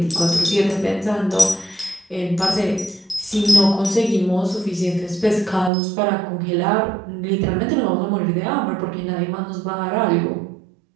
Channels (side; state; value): left; drops out; at 5.7 s